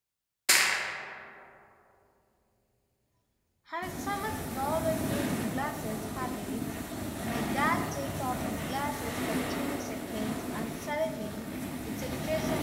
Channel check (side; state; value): both; identical; correlation 1.00